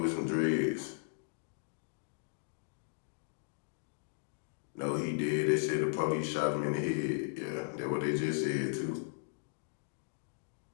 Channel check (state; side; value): silent; right; digital silence